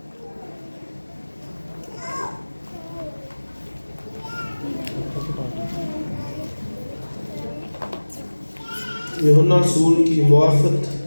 یوحنا رسول کی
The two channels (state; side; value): inverted; both; correlation -1.00